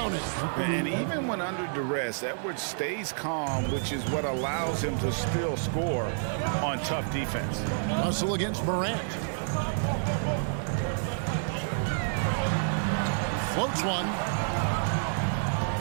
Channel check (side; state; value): left; silent; 59 dB below the other